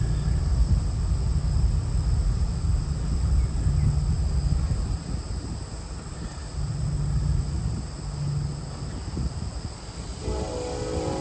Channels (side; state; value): both; identical; correlation 1.00